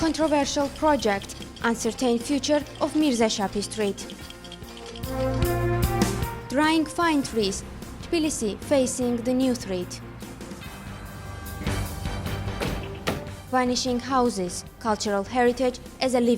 controversial project, uncertain future of Mirza Shafi Street. Drying fine trees, Tbilisi facing the new threat. Vanishing houses, cultural heritage as a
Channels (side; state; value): both; identical; correlation 1.00